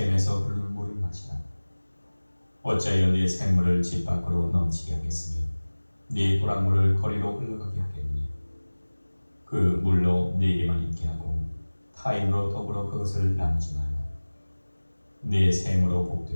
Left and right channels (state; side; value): inverted; both; correlation -1.00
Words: 흐르는 물을 마시라. 어찌하여 네 샘물을 집 밖으로 넘치게 하겠으며 네 도랑물을 거리로 흘러가게 하겠느냐. 그 물로 네게만 있게 하고 타인으로 더불어 그것을 나누지 말라. 네 샘으로